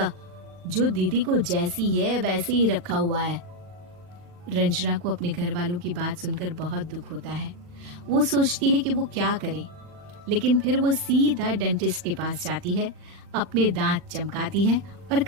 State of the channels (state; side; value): late; left; 40 ms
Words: जो दीदी को जैसी है वैसे ही रखा हुआ है। रंजना को अपने घर वालों की बात सुनकर बहुत दुख होता है। वो सोचती है कि वो क्या करे, लेकिन फिर वो सीधा डेंटिस्ट के पास जाती है, अपने दांत चमकाती है और